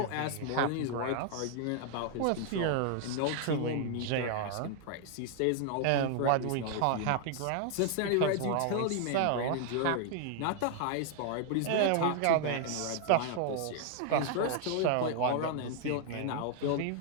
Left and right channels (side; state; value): both; different; correlation 0.00